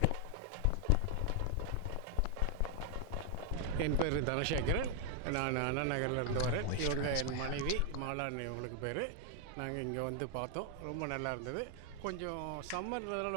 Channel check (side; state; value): both; different; correlation 0.00